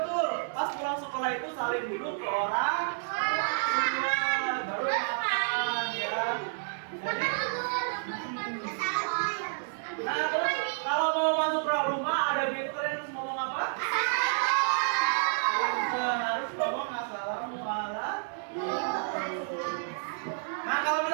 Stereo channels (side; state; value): left; silent; digital silence